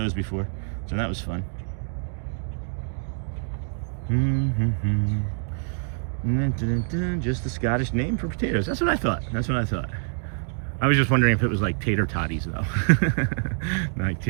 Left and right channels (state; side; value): silent; left; 61 dB below the other